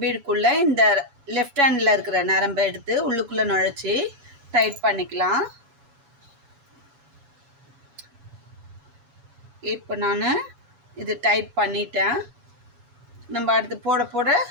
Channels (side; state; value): left; late; 7.1 ms